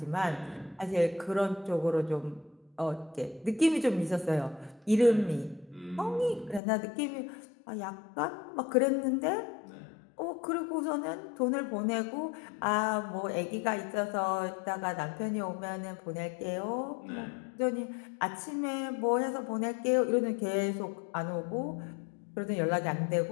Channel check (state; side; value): drops out; right; at 6.6 s